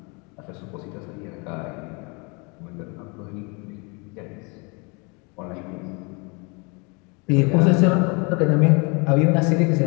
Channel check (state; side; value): quieter; right; 31.0 dB